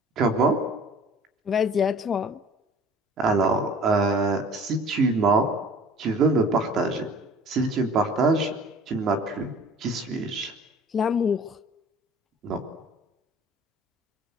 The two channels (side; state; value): both; normal; correlation 0.46